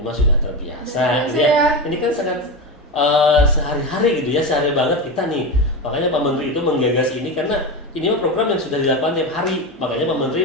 sudah terbiasa gitu ya. Ini kan sangat sehari-hari gitu ya, sehari banget kita nih. Makanya Pak Menteri itu menggagas ini karena ini mah program yang sudah dilakukan tiap hari. Makanya Pak Menteri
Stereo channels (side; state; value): both; normal; correlation 0.19